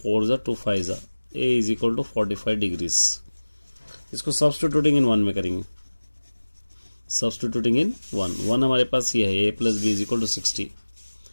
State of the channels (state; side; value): inverted; both; correlation -1.00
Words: ज़ा 2, 5 ज़ा, a is equal to 45 degrees. इसको सब्स्टिट्यूटिंग इन 1 में करेंगे, सब्स्टिट्यूटिंग इन 1 हमारे पास ये है, a plus B is equal to 60,